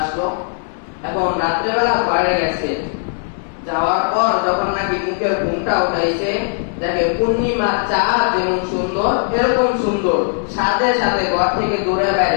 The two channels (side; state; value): right; silent; 67 dB below the other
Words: এখন রাত্রেবেলা ঘরে গেছে, যাওয়ার পর যখন নাকি মুখের ঘুমটা উঠাইছে, দেখে পূর্ণিমা চাঁদ যেমন সুন্দর এরকম সুন্দর, সাথে সাথে ঘর থেকে দৌড়ে